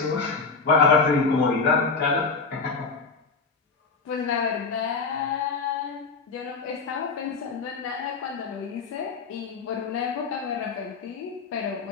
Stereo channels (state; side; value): quieter; right; 4.6 dB